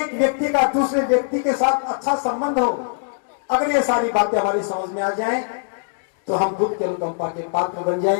व्यक्ति का दूसरे व्यक्ति के साथ अच्छा संबंध हो। अगर ये सारी बातें हमारी समझ में आ जाएं तो हम बुद्ध के अनुकंपा के पात्र बन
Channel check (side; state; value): right; silent; digital silence